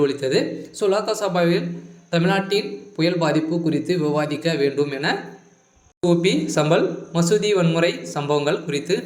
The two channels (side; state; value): both; identical; correlation 1.00